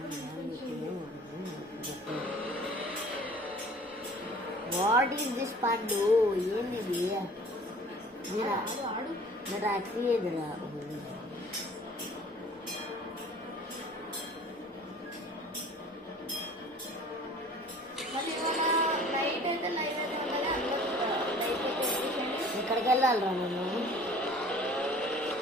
వాట్ ఈస్ దిస్ పండు? ఏంది ఇది? నా టాక్సీ ఎదురా. ఎక్కడికి వెళ్ళాలిరా నేను?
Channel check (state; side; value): normal; both; correlation 0.48